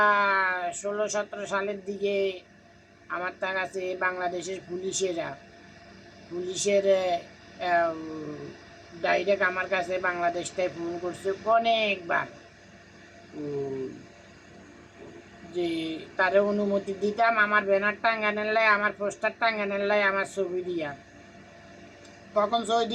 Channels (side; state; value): both; identical; correlation 1.00